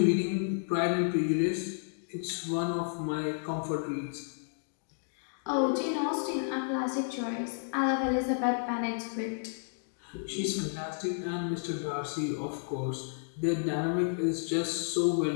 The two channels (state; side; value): silent; right; digital silence